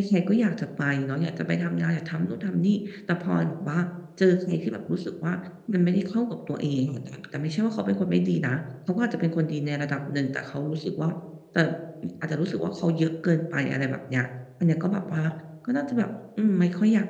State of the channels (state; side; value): identical; both; correlation 1.00